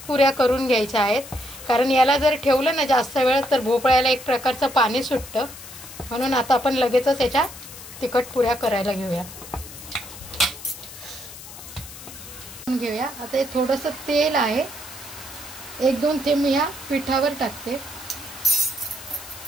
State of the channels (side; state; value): left; noise; hiss, 15 dB below the sound